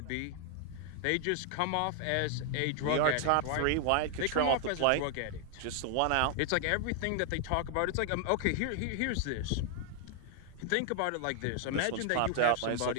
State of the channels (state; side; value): different; both; correlation 0.00